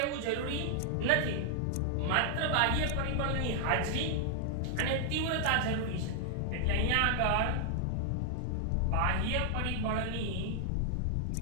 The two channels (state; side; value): different; both; correlation 0.00